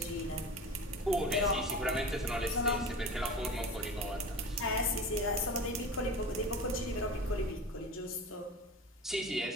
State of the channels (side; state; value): both; normal; correlation 0.33